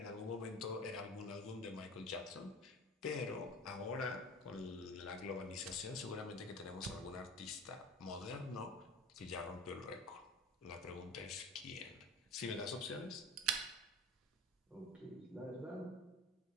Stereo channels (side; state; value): both; normal; correlation 0.36